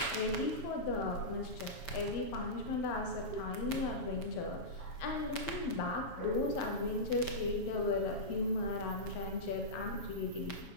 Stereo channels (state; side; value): late; right; 7.2 ms